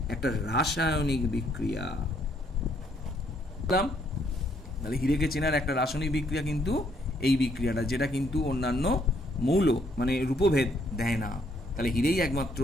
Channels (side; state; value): both; normal; correlation 0.69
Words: একটা রাসায়নিক বিক্রিয়া। তাহলে হীরেকে চেনার একটা রাসায়নিক বিক্রিয়া কিন্তু এই বিক্রিয়াটা, যেটা কিন্তু অন্যান্য মৌল মানে রূপভেদ দেয় না। তাহলে হীরেই একমাত্র